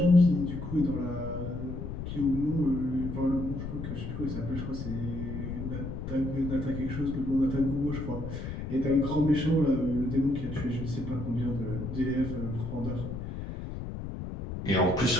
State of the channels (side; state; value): left; noise; rumble, 6 dB below the sound